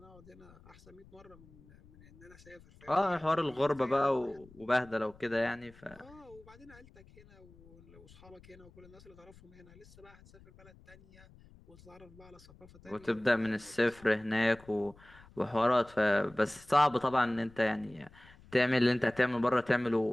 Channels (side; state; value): left; noise; rumble, 24 dB below the sound